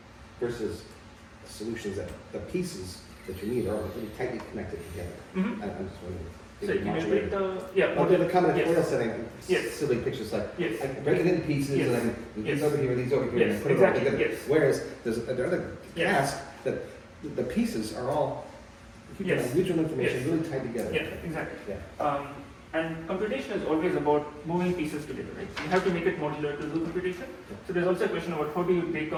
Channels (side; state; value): both; identical; correlation 1.00